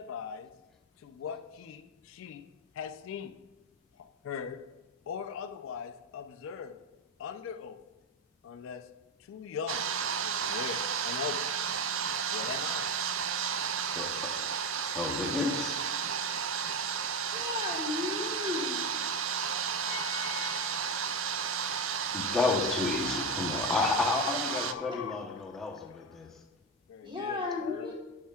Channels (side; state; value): both; normal; correlation 0.15